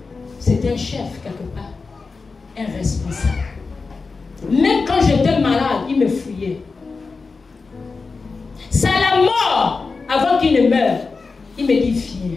c'était un chef quelque part, un responsable. Même quand j'étais malade, il me fouillait. C'est à la mort, avant qu'il ne meure, il me dit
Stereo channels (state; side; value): quieter; right; 4.3 dB